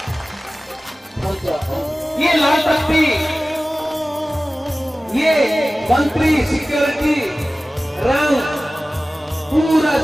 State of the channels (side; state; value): both; normal; correlation 0.97